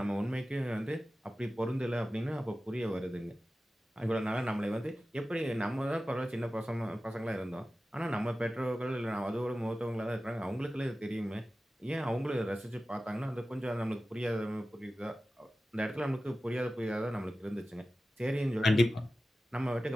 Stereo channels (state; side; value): normal; both; correlation 0.95